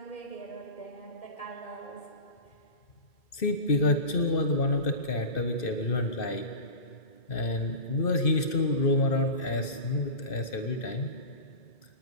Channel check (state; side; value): late; right; 2.6 ms